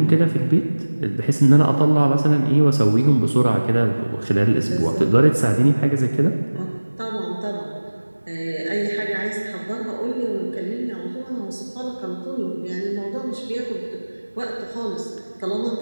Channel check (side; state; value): both; inverted; correlation -1.00